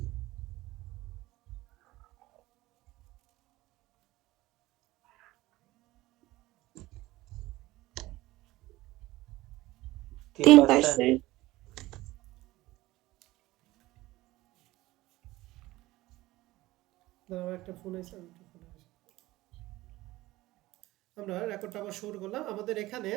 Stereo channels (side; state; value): left; quieter; 18.1 dB